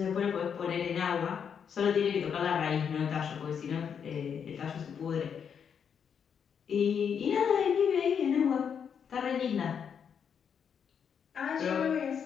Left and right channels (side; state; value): right; quieter; 7.4 dB